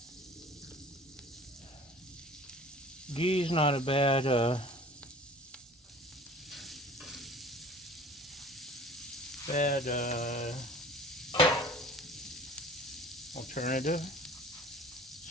Ghee's not a bad alternative.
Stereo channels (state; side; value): normal; both; correlation 0.46